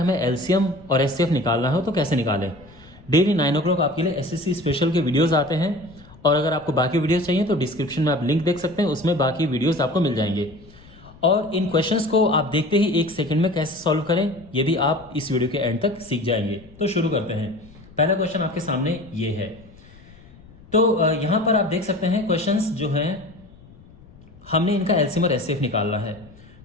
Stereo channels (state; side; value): noise; left; rumble, 23 dB below the sound